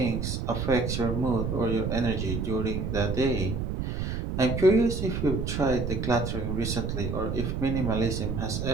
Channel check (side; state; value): right; noise; rumble, 2 dB below the sound